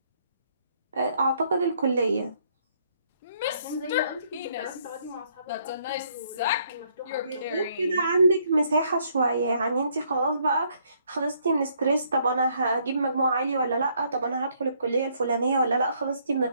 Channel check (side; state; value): both; inverted; correlation -0.68